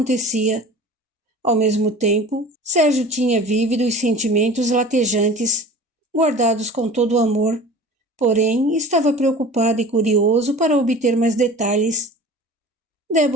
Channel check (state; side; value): normal; both; correlation 0.40